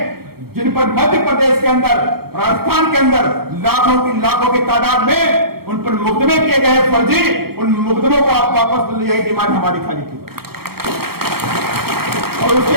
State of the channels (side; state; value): left; late; 0.95 ms